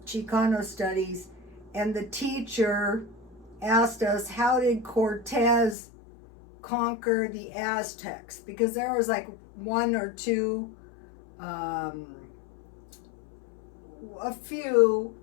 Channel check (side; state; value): right; drops out; at 5.8 s